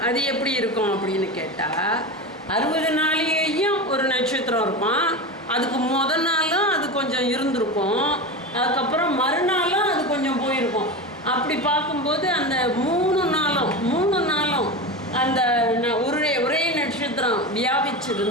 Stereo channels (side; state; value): both; normal; correlation 0.23